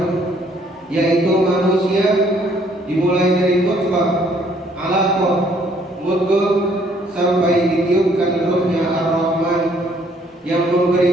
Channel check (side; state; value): both; normal; correlation 0.64